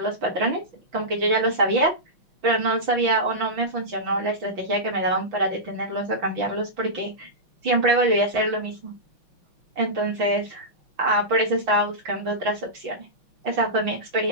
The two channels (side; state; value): left; late; 5.9 ms